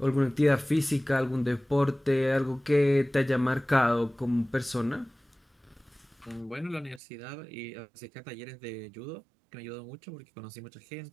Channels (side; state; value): left; drops out; at 7.0 s